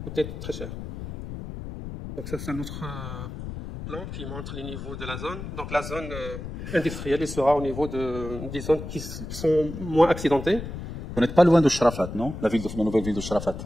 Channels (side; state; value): left; noise; rumble, 8 dB below the sound